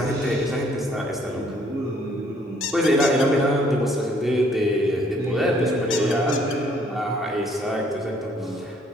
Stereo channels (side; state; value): both; normal; correlation 0.63